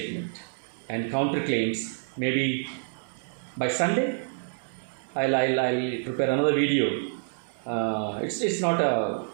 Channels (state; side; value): silent; left; 58 dB below the other